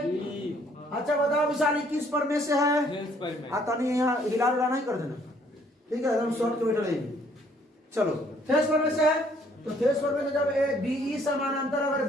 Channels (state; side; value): normal; both; correlation 0.63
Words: अच्छा बताओ विशाली किस पर में से है, तनी यहाँ हिला डुला नहीं कर देना, ठीक है, एकदम शॉर्ट के बैठे रहेंगे। चलो थेस पर में से है, तो थेस पर में से जब ए बीई समानांतर अगर